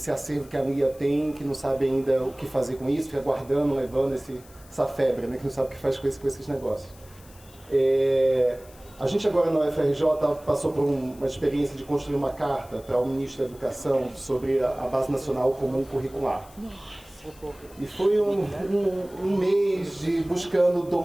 acervo que a Lia tem, que não sabe ainda o que fazer com isso, fica guardando, levando essa febre, né, que não sabe o que faz com esses negócios. A gente agora na UFRJ passou por uma experiência de construir uma carta para o Ministro da Educação sobre a Base Nacional Comum Curricular. E foi um mês de buscando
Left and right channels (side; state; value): left; noise; hiss, 24 dB below the sound